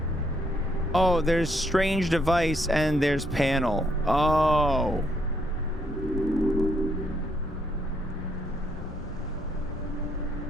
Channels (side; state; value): both; normal; correlation 0.73